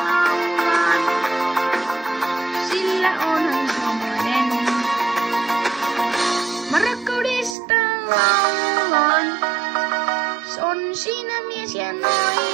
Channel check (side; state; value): left; drops out; at 7.6 s